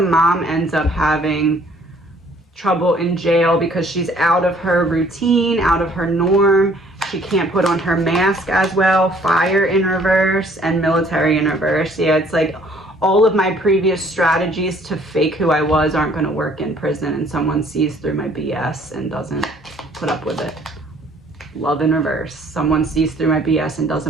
mom ends up having trouble in jail because she's out of her routine, out of her norm. She can't put on her mask as well. Fire in reverse and military in reverse. Yeah, it's like all of my previous strategies to fake who I was aren't going to work in prison, and someone sees through my BS and doesn't put up with it. Love in reverse. Someone sees through my BS and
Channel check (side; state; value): both; normal; correlation 0.59